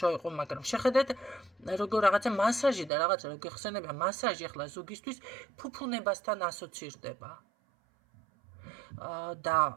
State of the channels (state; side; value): drops out; left; at 2.9 s